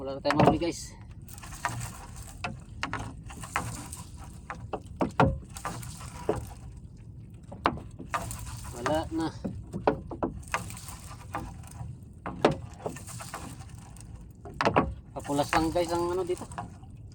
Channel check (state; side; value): identical; both; correlation 1.00